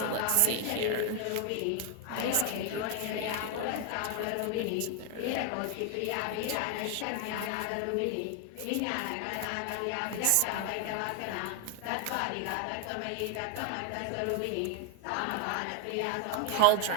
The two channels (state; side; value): different; both; correlation 0.01